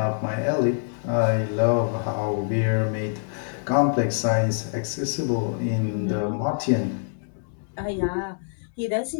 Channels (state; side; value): silent; right; digital silence